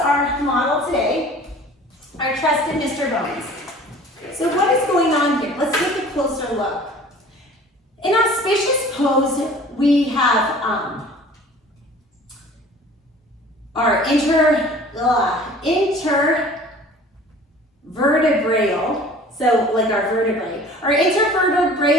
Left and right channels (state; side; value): normal; both; correlation 0.46